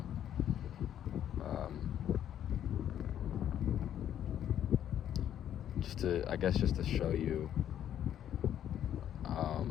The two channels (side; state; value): right; quieter; 10.4 dB